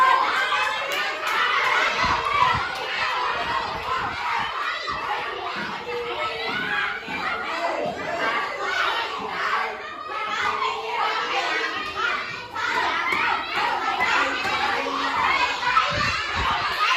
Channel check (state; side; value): identical; both; correlation 1.00